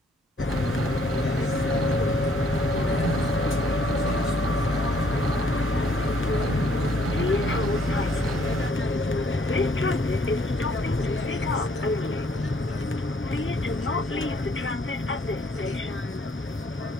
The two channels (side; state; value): both; normal; correlation 0.65